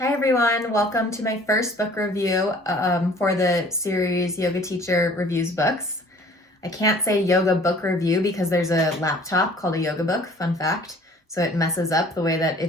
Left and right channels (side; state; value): both; normal; correlation 0.52